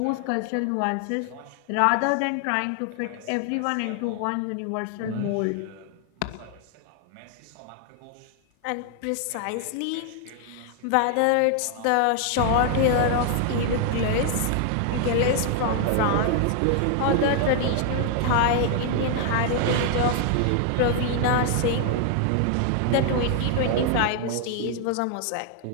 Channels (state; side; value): different; both; correlation 0.00